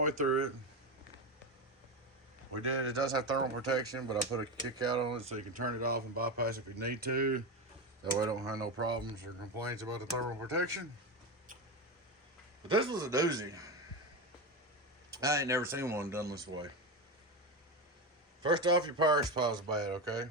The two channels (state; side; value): normal; both; correlation 0.17